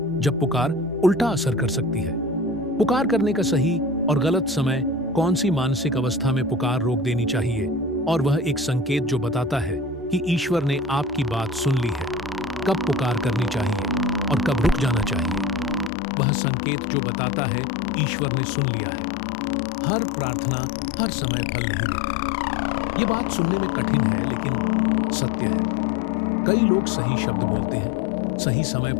जब पुकार उल्टा असर कर सकती है? पुकार करने का सही और गलत समय, कौन सी मानसिक अवस्था में पुकार रोक देनी चाहिए, और वह एक संकेत जो बताता है कि ईश्वर ने आपकी बात सुन ली है। कब पुकार करनी चाहिए और कब रुक जाना चाहिए, वह संकेत जो बताता है ईश्वर ने सुन लिया है। हर प्रार्थना हर समय फल नहीं देती। ये बात सुनने में कठिन है, लेकिन सत्य है। कई लोग सही शब्द बोलते हैं, सही समय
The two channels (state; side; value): drops out; right; at 15.9 s